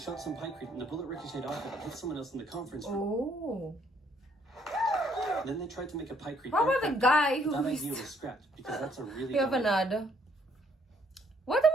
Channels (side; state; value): both; normal; correlation 0.67